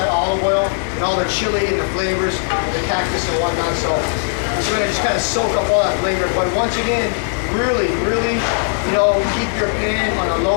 olive oil and all the chili and the flavors, and the cactus and whatnot. So it's going to just kind of soak up all that flavor. But once again, really, you know, keep your pan on a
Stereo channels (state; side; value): silent; right; digital silence